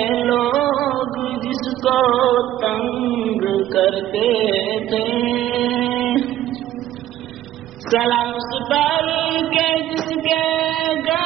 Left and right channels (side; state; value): left; quieter; 13.1 dB